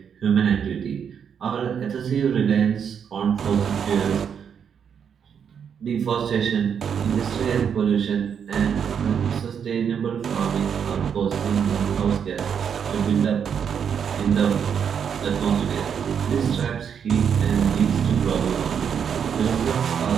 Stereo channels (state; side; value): quieter; left; 7.5 dB